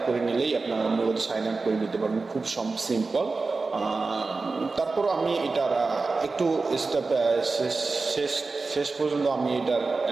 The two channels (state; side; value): quieter; left; 3.9 dB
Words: করে নিলেই আপনারা মূলত সাইন আপ করে নিতে পারবেন, খুব সিম্পল। তারপর আমি এটার একটু স্টেপ শেষ পর্যন্ত আমি এটার